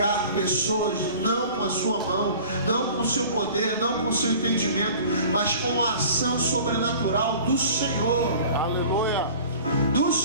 pessoas não com a sua mão, não com o seu poder, não com o seu entendimento, mas com a ação sobrenatural do Senhor. Aleluia. Do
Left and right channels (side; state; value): both; inverted; correlation -0.44